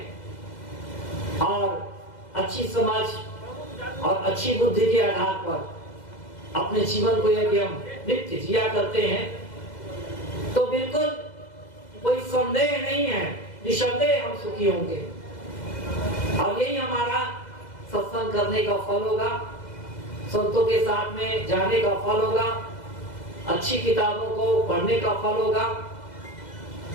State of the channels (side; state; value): right; late; 2.0 ms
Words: और अच्छी समझ और अच्छी बुद्धि के आधार पर अपने जीवन को यदि हम नित्य जिया करते हैं तो बिल्कुल कोई संदेह नहीं है, निसंदेह हम सुखी होंगे। और यही हमारा सत्संग करने का फल होगा, संतों के साथ में जाने का फल होगा, अच्छी किताबों को पढ़ने का फल होगा,